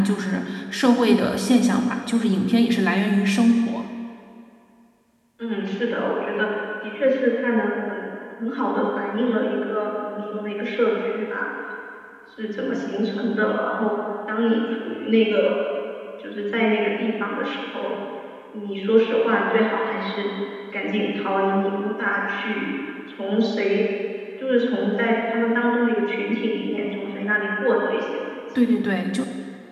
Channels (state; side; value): identical; both; correlation 1.00